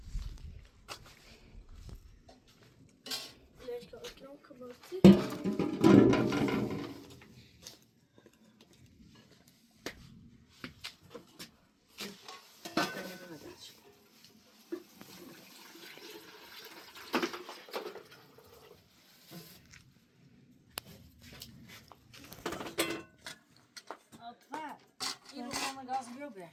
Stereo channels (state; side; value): identical; both; correlation 1.00